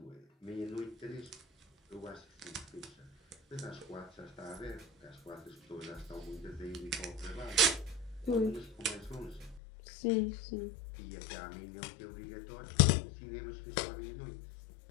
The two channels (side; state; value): right; drops out; at 9.6 s